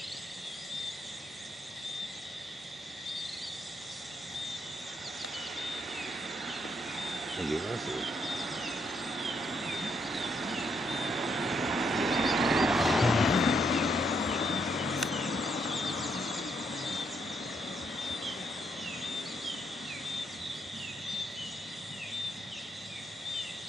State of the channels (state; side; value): normal; both; correlation 0.75